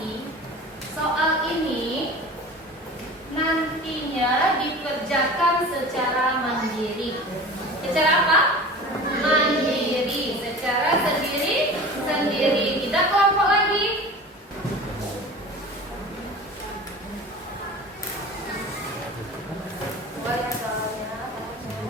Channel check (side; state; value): both; normal; correlation 0.37